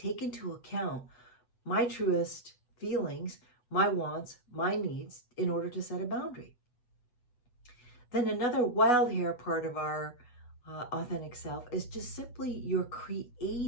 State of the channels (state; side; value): late; right; 8.1 ms